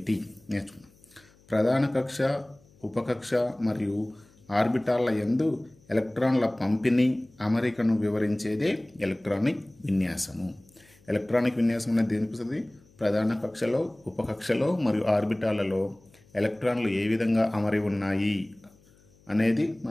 నేర్చుకుందాం. ప్రధాన కక్ష, ఉపకక్ష మరియు ఆర్బిటాల్ల యందు ఎలక్ట్రాన్ల పంపిణీ, అమరికను వివరించేదే ఎలక్ట్రానిక్ విన్యాసము. ఎలక్ట్రానిక్ విన్యాసం అనేది దేనిపిస్తుంది? ప్రధాన కక్షలో, ఉపకక్షలో మరియు ఆర్బిటాలలో ఎలక్ట్రాన్లు ఏ విధంగా అమరి ఉన్నాయి అనేది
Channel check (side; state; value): left; noise; hum, 29 dB below the sound